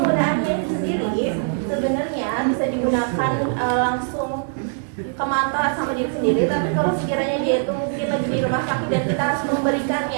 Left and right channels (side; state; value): left; silent; digital silence